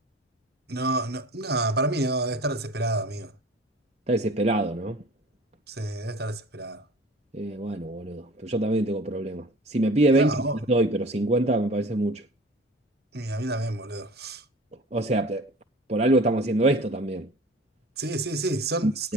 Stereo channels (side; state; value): both; normal; correlation 0.42